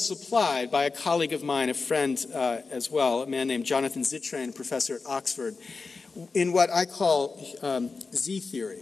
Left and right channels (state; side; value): quieter; right; 4.4 dB